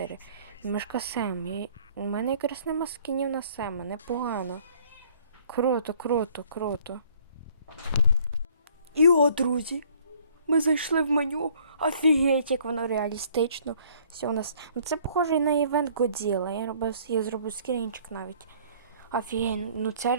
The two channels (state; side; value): inverted; both; correlation -0.58